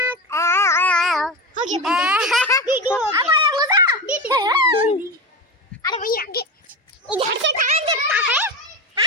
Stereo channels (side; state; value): both; normal; correlation 0.22